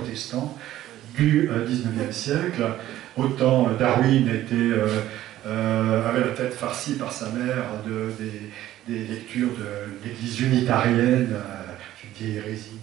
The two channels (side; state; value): left; quieter; 13.8 dB